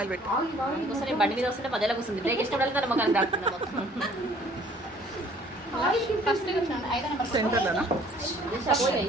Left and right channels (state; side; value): normal; both; correlation 0.56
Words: పెట్టి బండి మీద వస్తుంటే మధ్యలో వస్తుంది, బ్రేక్ ఇష్టపడాలి మొక్కలు రాకుండా ఫస్ట్ సెంటర్లోనా